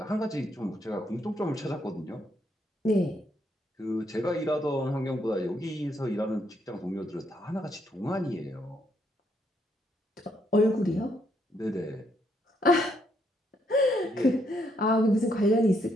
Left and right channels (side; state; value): both; normal; correlation 0.74